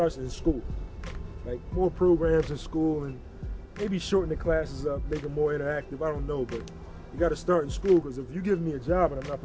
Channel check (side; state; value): both; identical; correlation 1.00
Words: in school. Like more programs in school and maybe shorten the classes up, make them more interactive. I don't know, but you got to start in school because if you give me a job and I'm not